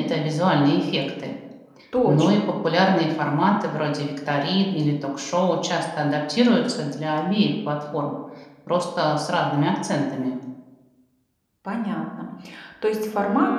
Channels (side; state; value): both; identical; correlation 1.00